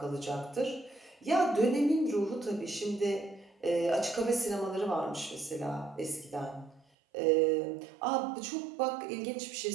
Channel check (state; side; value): drops out; left; at 6.9 s